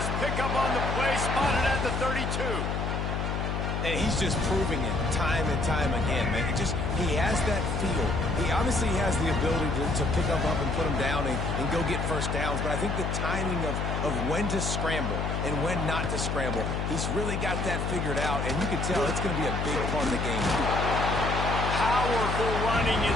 pickup on the play, spotted at the 32. And he's just proving it time and time again, man. He has that feel. He obviously has the ability to pick up and put him down and go get first downs. But I think the timing of when to scramble and when not to scramble, he's really got that figured out. And you can tell it's going to be a big part of the game. Powerful running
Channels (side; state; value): left; noise; hum, 1 dB below the sound